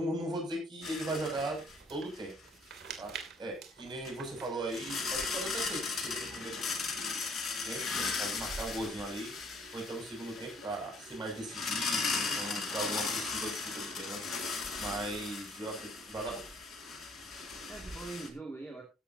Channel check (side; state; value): both; normal; correlation 0.61